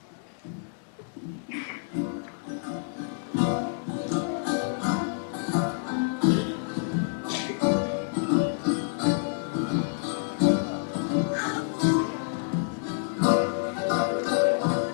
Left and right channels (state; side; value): silent; right; digital silence